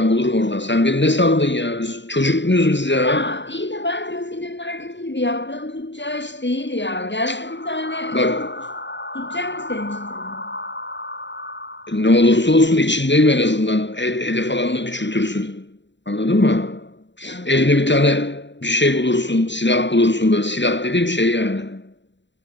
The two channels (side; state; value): right; late; 0.52 ms